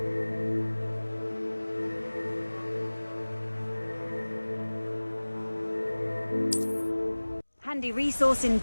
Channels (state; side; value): inverted; both; correlation -1.00